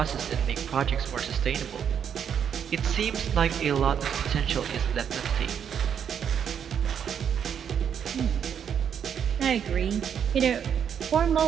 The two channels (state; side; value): quieter; left; 8.2 dB